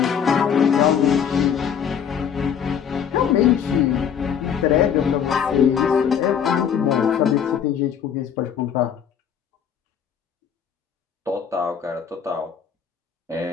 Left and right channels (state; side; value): quieter; right; 7.9 dB